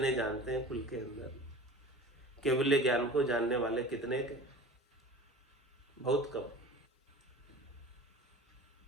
जानते हैं कुल के अंदर। केवल्य ज्ञान को जानने वाले कितने के? बहुत कम।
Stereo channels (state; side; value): normal; both; correlation 0.39